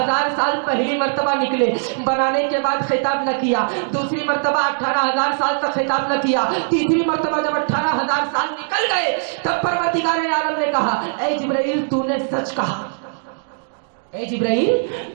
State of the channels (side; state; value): left; silent; 65 dB below the other